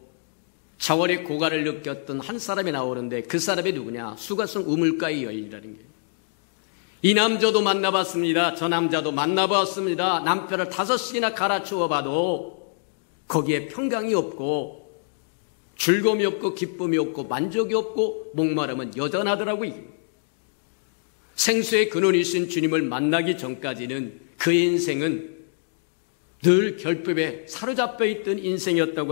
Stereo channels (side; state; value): right; silent; digital silence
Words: 자월의 고갈을 느꼈던 한 사람이 나오는데 그 사람이 누구냐? 수가성 우물가의 여인이라는 거예요. 이 남자도 만나봤습니다. 저 남자도 만나봤습니다. 남편을 5씩이나 갈아치워 봐도 거기에 평강이 없고 즐거움이 없고 기쁨이 없고 만족이 없고 목마름은 여전하더라고요. 생수의 근원이신 주님을 만나기 전까지는 그의 인생은 늘 결핍에 사로잡혀 있던